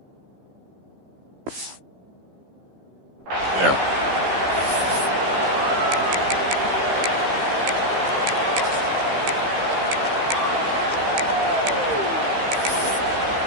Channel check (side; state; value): left; late; 15 ms